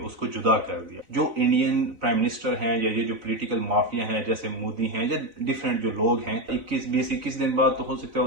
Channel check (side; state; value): left; late; 4.0 ms